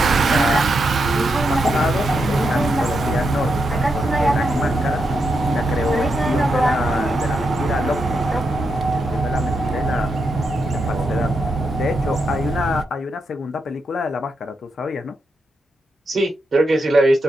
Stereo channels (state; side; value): normal; both; correlation 0.84